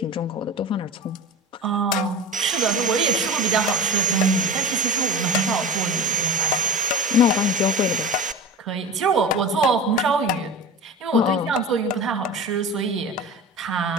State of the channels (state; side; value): normal; both; correlation 0.31